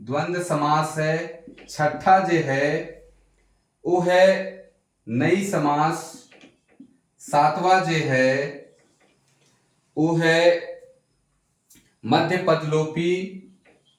समास है, छठा जो है वो है नई समास, सातवां जो है वो है मध्य पद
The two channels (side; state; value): both; identical; correlation 1.00